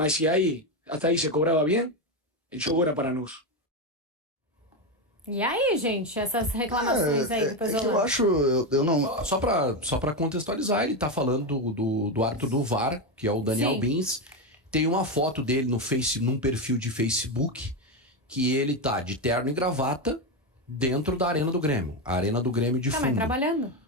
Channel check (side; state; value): both; normal; correlation 0.11